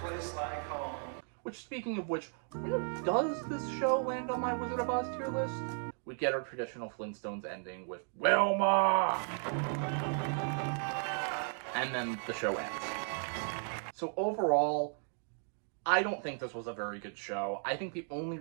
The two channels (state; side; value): silent; left; 54 dB below the other